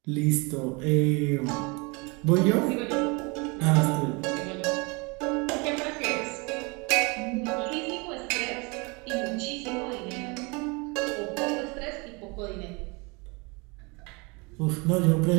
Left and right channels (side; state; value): left; quieter; 28.7 dB